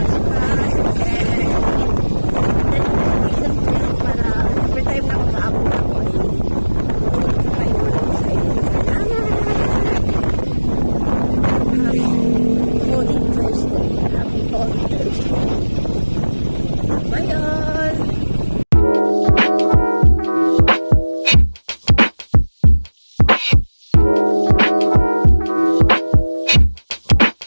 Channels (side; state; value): both; inverted; correlation -1.00